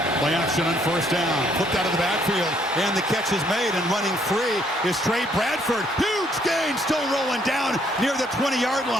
Play action on first down. Flipped out of the backfield, and the catch is made, and running free is Trey Bradford. Huge gain, still rolling down near the 20-yard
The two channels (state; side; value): normal; both; correlation 0.67